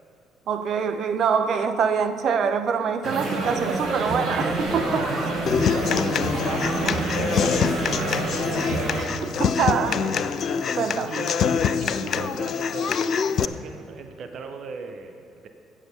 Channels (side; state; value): both; normal; correlation 0.63